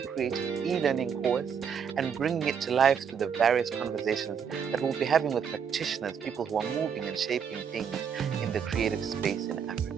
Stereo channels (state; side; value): quieter; left; 7.2 dB